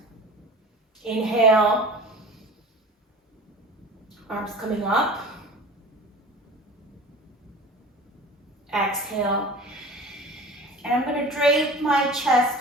Inhale. Arms coming up. Exhale. And I'm going to drape my chest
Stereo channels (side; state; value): both; normal; correlation 0.38